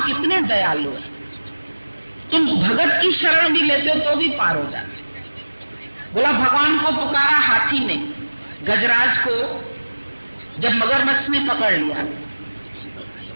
कितने दयालु है, तुम भगत की शरण भी लेते हो तो भी पार हो जाते। बोला भगवान को पुकारा हाथी ने, गजराज को जब मगरमच्छ ने पकड़ लिया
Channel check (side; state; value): both; inverted; correlation -1.00